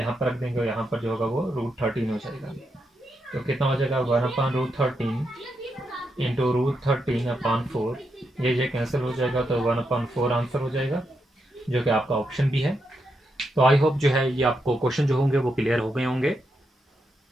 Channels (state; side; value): normal; both; correlation 0.83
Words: पर रख देंगे और यहाँ पर जो होगा वो √13 हो जाएगा। तो कितना हो जाएगा 1/√13 इंटू √13/4। ये कैंसिल हो जाएगा तो 1/4 आंसर हो जाएगा, जो कि आपका ऑप्शन भी है। तो आई होप जो है ये आपको क्वेश्चन जो होंगे वो क्लियर हो गए होंगे।